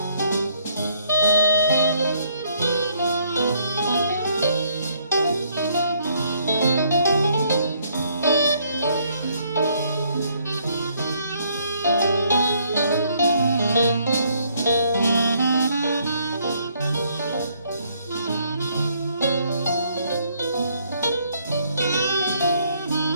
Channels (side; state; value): both; inverted; correlation -0.67